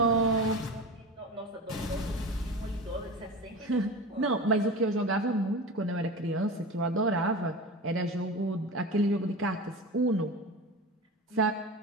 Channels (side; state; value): both; normal; correlation 0.30